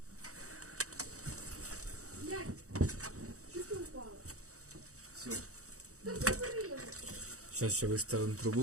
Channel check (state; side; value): late; left; 0.65 ms